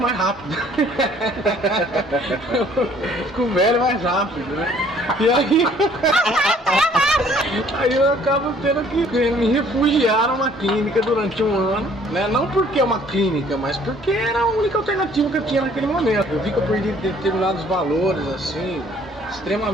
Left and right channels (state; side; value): normal; both; correlation 0.58